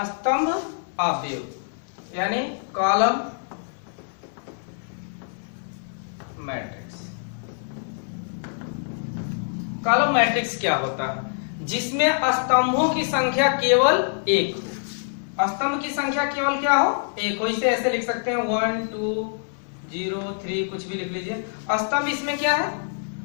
स्तंभ अवयव, यानी कॉलम मैट्रिक्स। कॉलम मैट्रिक्स क्या होता है, जिसमें स्तंभों की संख्या केवल 1 हो, स्तंभ की संख्या केवल क्या हो, 1 हो। इसे ऐसे लिख सकते हैं 1 2 0 3, कुछ भी लिख लीजिए। स्तंभ इसमें क्या है,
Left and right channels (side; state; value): right; silent; 62 dB below the other